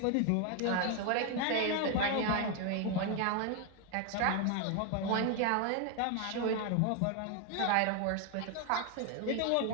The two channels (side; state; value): both; different; correlation 0.01